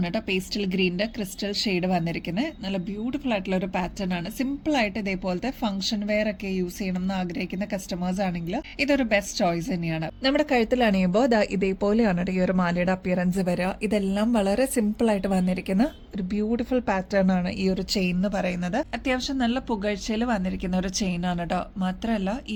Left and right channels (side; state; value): both; identical; correlation 1.00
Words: കേട്ടോ പേസ്റ്റൽ ഗ്രീനിന്റെ ക്രിസ്റ്റൽ ഷെയ്ഡ് വന്നിരിക്കുന്നത്. നല്ല ബ്യൂട്ടിഫുൾ ആയിട്ടുള്ള ഒരു പാറ്റേൺ ആണ്. സിമ്പിൾ ആയിട്ട് ഇതേപോലത്തെ ഫംഗ്ഷൻ വെയർ ഒക്കെ യൂസ് ചെയ്യണം എന്ന് ആഗ്രഹിക്കുന്ന കസ്റ്റമേഴ്സ് ആണെങ്കിൽ ഇതൊരു ബെസ്റ്റ് ചോയ്സ് തന്നെയാണ്. നമ്മുടെ കഴുത്തിൽ അണിയുമ്പോൾ ഇതേപോലെയാണ് ഈ ഒരു മാലയുടെ അപ്പിയറൻസ് വരിക. ഇതെല്ലാം വളരെ സിമ്പിൾ ആയിട്ട് വന്നിരിക്കുന്ന ഒരു ബ്യൂട്ടിഫുൾ പാറ്റേൺ ആണ് ഈ ഒരു ചെയിൻ എന്ന് പറയുന്നത്. അത്യാവശ്യം നല്ല പുകഴ്ചയിൽ വന്നിരിക്കുന്ന ഒരു ചെയിൻ ആണ് കേട്ടോ. മാത്രമല്ല ഈ